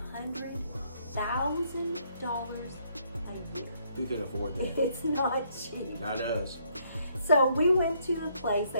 a year. Who can afford that? It's not cheap. Not us. So we went to a place,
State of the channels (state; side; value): inverted; both; correlation -0.69